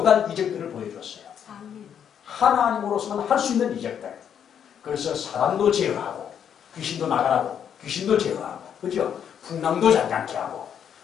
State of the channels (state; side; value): quieter; right; 8.5 dB